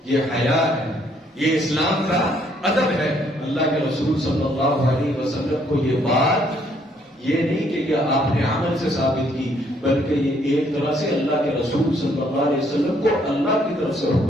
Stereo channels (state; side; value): normal; both; correlation 0.67